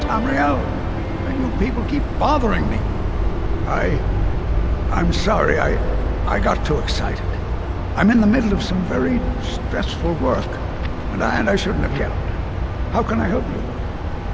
And you people keep bothering me. I'm sorry, I got too excited. I'm in the middle of some very stressful work, and I shouldn't have yelled. How can I help you?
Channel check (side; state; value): both; identical; correlation 1.00